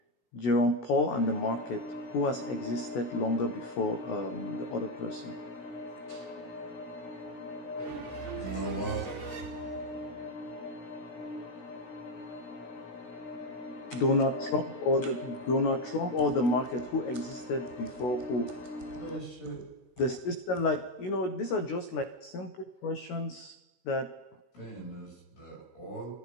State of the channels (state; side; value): late; right; 16 ms